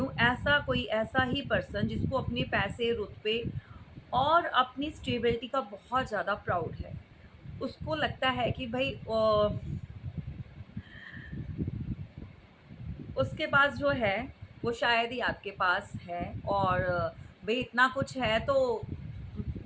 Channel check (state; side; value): identical; both; correlation 1.00